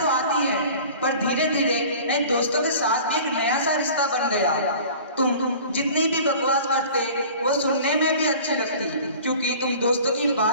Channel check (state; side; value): inverted; both; correlation -0.44